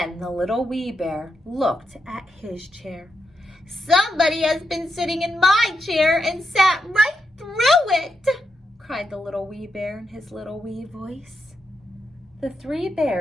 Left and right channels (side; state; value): both; normal; correlation 0.84